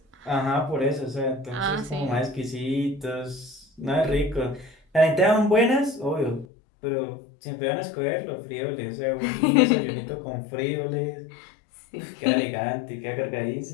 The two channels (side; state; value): right; drops out; at 6.5 s